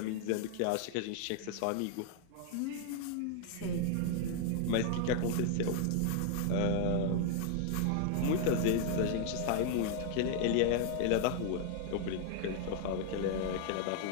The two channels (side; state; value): both; different; correlation 0.00